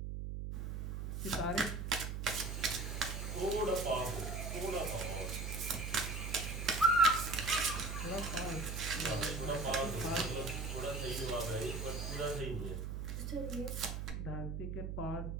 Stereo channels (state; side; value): noise; right; hum, 4 dB below the sound